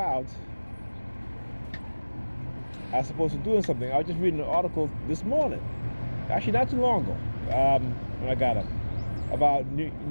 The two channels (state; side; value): inverted; both; correlation -1.00